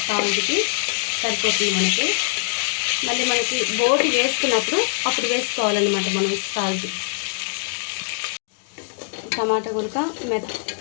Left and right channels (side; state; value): right; silent; digital silence